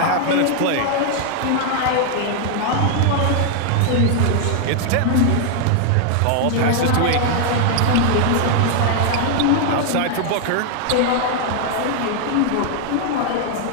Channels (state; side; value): different; both; correlation 0.00